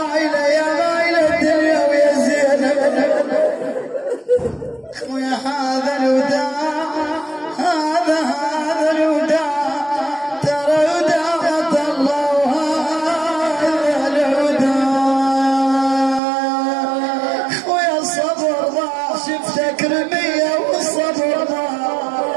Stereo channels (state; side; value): drops out; left; at 16.2 s